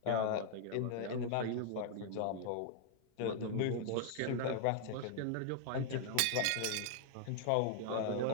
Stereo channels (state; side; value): different; both; correlation -0.01